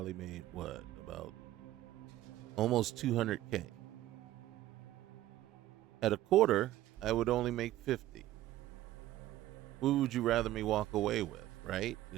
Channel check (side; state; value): left; quieter; 14.7 dB